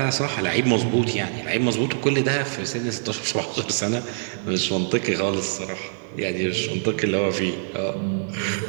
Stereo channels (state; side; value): silent; left; 62 dB below the other